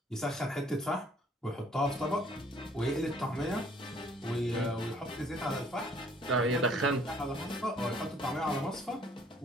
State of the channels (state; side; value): normal; both; correlation 0.60